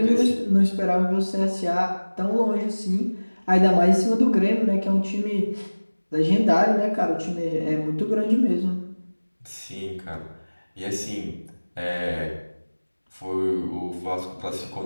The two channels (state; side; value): inverted; both; correlation -1.00